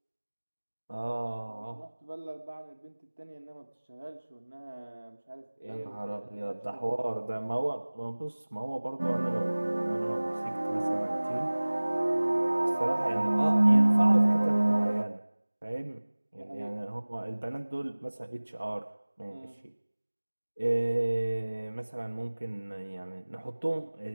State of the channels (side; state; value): both; inverted; correlation -1.00